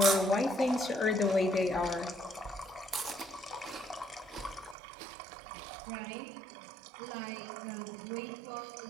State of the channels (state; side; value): drops out; left; at 4.8 s